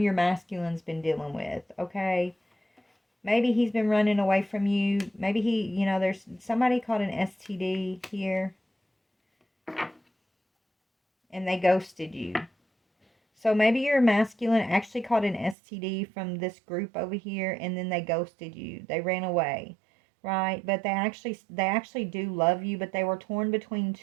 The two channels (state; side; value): drops out; left; at 15.6 s